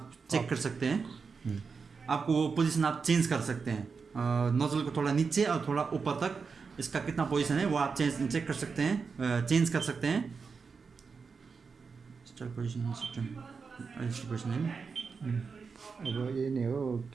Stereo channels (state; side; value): quieter; left; 5.2 dB